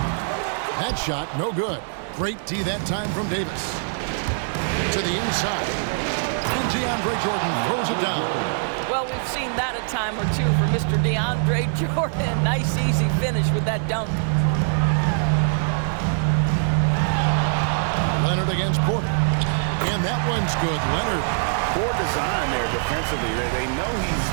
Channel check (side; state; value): left; silent; digital silence